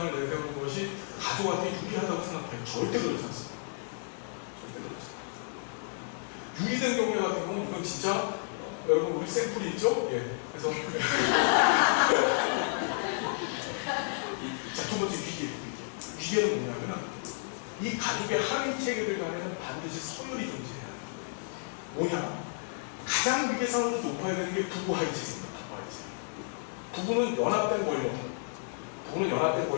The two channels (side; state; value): right; silent; digital silence